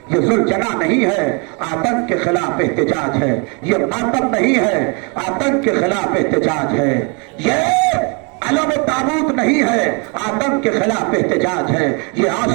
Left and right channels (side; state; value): left; quieter; 33.8 dB